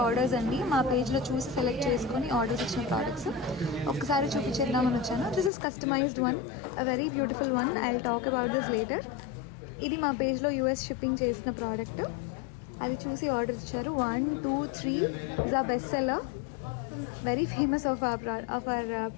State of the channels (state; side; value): drops out; right; at 5.5 s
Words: orders అండి. మా పేజ్లో చూసి సెలెక్ట్ చేసుకొని ఆర్డర్స్ ఇచ్చిన ప్రోడక్ట్స్ ఒక్కసారి చూపించేద్దామని వచ్చాను. This is customized one, a very beautiful one. I will talk about this later. ఇది మా పేజ్లో యూఎస్ షిప్పింగ్ చేసిన ప్రోడక్ట్. అది చూసి ఆర్డర్ ఇచ్చారు. 1, 2, 3 ఇస్ ఆ best seller, very famous of our